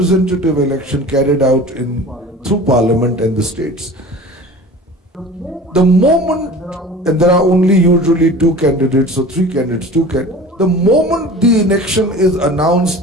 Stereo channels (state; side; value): normal; both; correlation 0.39